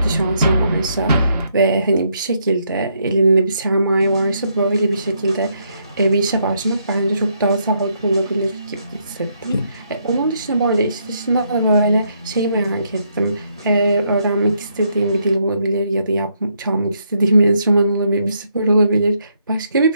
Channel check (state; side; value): inverted; both; correlation -0.75